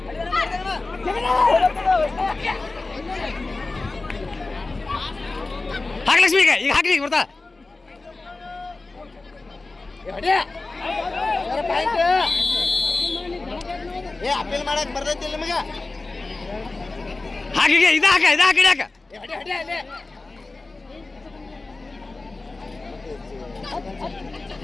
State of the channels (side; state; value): right; quieter; 3.4 dB